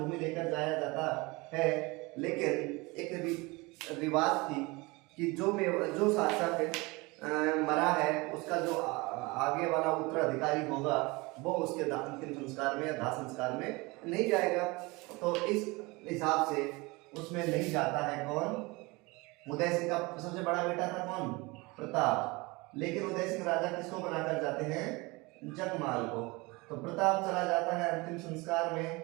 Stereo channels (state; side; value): quieter; left; 24.5 dB